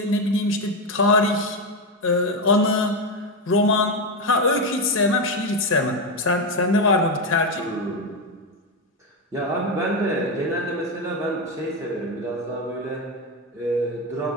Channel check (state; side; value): normal; both; correlation 0.10